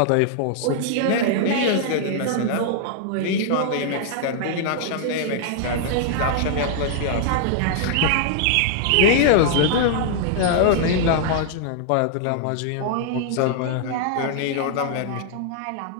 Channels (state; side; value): different; both; correlation -0.01